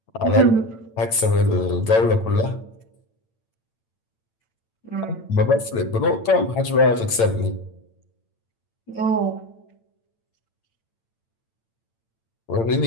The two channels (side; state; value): right; late; 8.9 ms